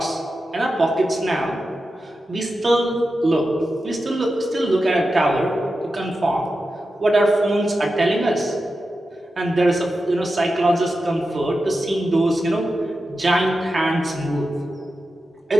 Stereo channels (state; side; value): normal; both; correlation 0.91